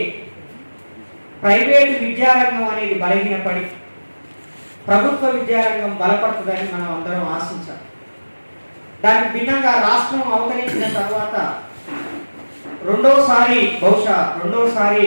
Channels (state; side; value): inverted; both; correlation -1.00